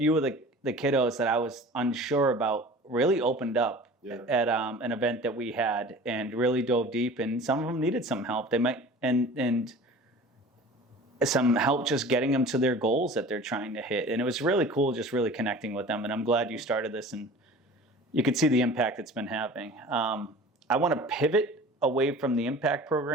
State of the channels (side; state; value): both; normal; correlation 0.41